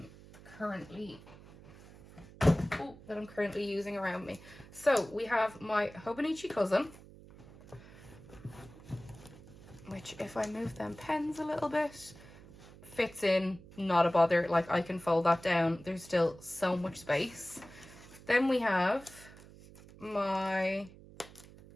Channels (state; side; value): noise; right; hum, 20 dB below the sound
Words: currently using around me. So we have my Hobonichi cousin, which if I move them pens a little bit, fits in, not a bother. Like, I can fold that down. There's still so much space. Then we have my